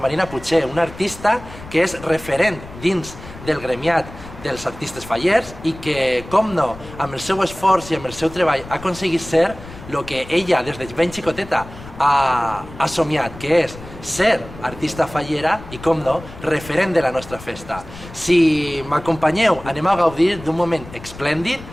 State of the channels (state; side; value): noise; left; rumble, 16 dB below the sound